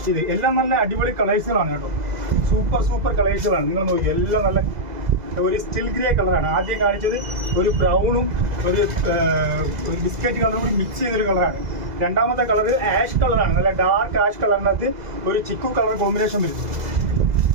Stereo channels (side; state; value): left; late; 2.0 ms